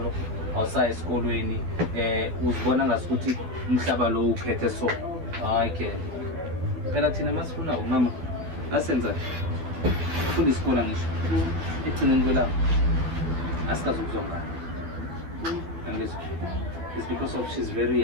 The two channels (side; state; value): left; late; 13 ms